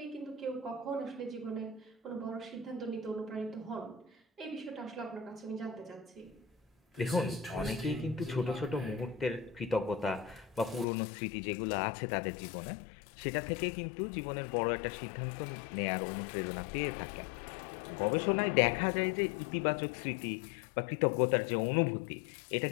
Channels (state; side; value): drops out; right; at 10.9 s